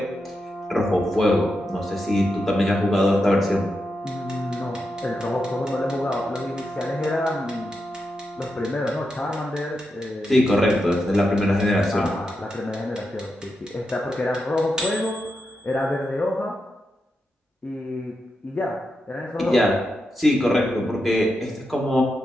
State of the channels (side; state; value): both; normal; correlation 0.87